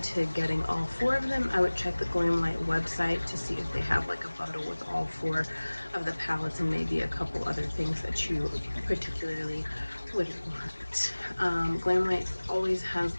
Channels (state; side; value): inverted; both; correlation -1.00